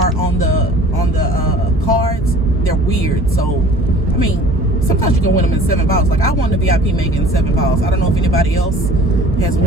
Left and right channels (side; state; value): both; normal; correlation 0.47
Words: on the cards, they're weird. So I mean, sometimes you can win them in 7 balls. Like I won the VIP Mega in 7 balls. I don't know if anybody else has